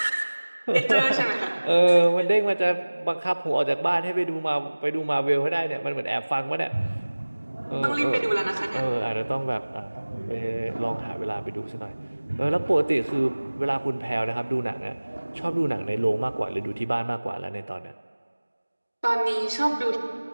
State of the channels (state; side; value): inverted; both; correlation -1.00